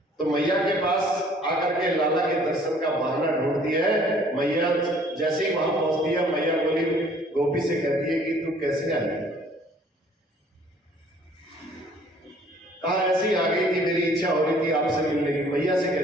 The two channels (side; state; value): both; normal; correlation 0.57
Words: तो मैया के पास आकर के लाला के दर्शन का बहाना ढूंढती है। मैया जैसे ही वहां पहुंचती है, मैया बोली गोपी से कहती है कि तू कैसे आई? कहा ऐसी आ गई थी, मेरी इच्छा हो रही थी आपसे मिलने की। मैया से